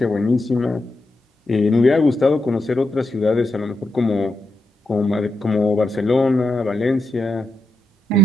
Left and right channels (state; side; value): normal; both; correlation 0.84